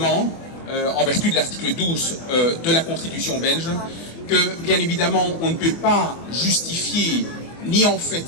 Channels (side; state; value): right; late; 24 ms